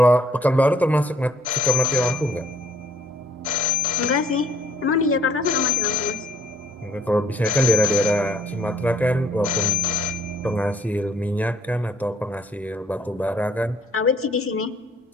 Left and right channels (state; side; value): normal; both; correlation 0.64